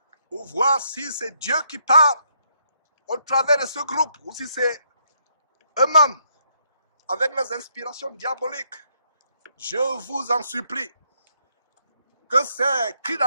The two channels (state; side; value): inverted; both; correlation -0.74